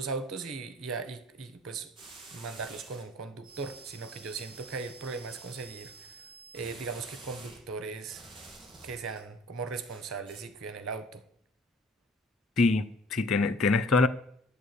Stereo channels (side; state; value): both; normal; correlation 0.52